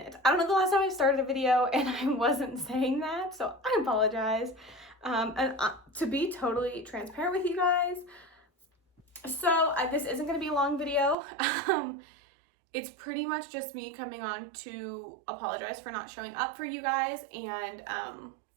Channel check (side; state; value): left; drops out; at 11.2 s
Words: I don't know the last time I started a video and I wasn't saying that, so I apologize. To be totally transparent with you guys, so this isn't going to be a long video. It's pretty much just me coming on to apologize for not showing up for you guys and